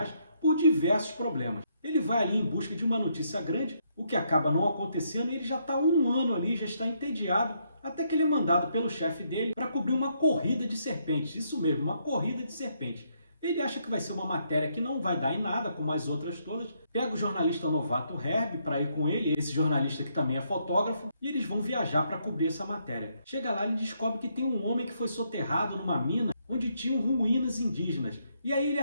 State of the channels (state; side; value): inverted; both; correlation -0.74